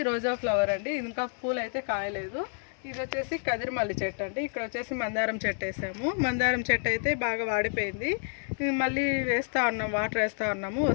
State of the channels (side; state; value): right; silent; 55 dB below the other